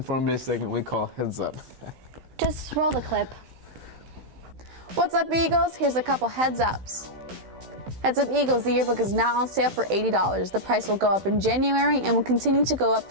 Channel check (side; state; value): left; late; 16 ms